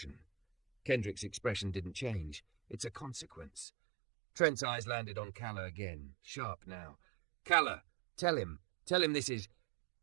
Kendrick's expression didn't change. It's a consequence. Trent's eyes landed on Calla again, sharp now. Calla, tell him this is...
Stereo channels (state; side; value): drops out; left; at 3.7 s